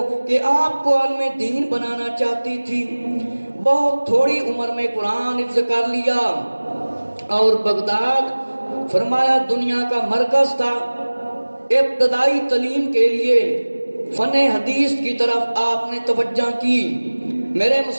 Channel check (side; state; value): both; inverted; correlation -1.00